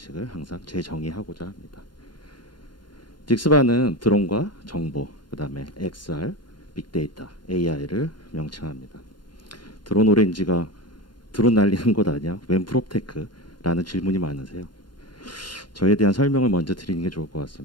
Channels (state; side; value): late; right; 0.71 ms